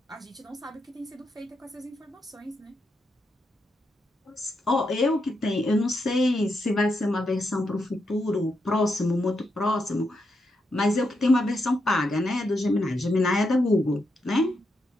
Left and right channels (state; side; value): normal; both; correlation 0.83